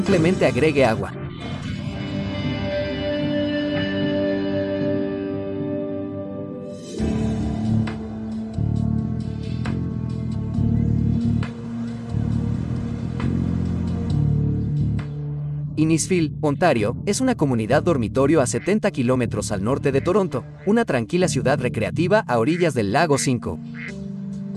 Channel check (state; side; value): identical; both; correlation 1.00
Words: agregue agua. Innisfil, Ontario, es una comunidad dormitorio a 70 kilómetros al norte de Toronto, una tranquila ciudad recreativa a orillas del lago Simcoe.